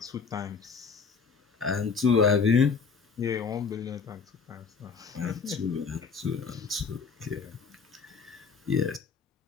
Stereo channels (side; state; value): right; quieter; 5.5 dB